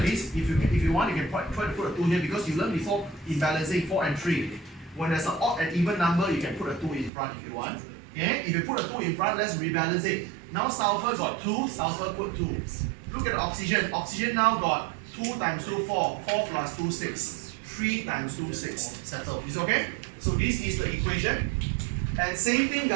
this. If you want, you can try to put a 2 here because you learned before in balancing 4 and 3. When there's an odd and even number, you can put a 2 in front if you want. Okay, if you put a 2 in front, let's rebalance it. Now sulfur got 2, sulfur put 2. Look at the oxygen. Oxygen now got 2 times 2, 4. 4 plus 2, 6. 3 times 2, 6. Settle. Is it okay? So this is the equation. And same thing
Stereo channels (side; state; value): left; drops out; at 7.1 s